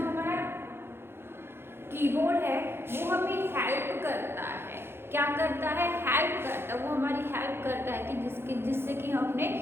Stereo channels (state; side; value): late; left; 0.11 ms